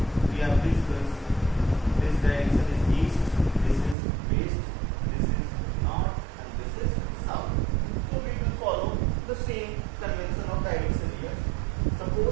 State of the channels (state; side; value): drops out; left; at 4.0 s